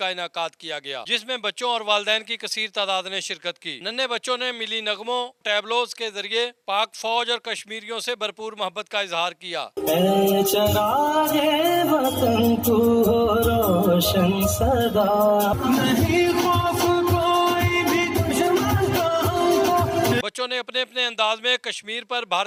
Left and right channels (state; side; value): identical; both; correlation 1.00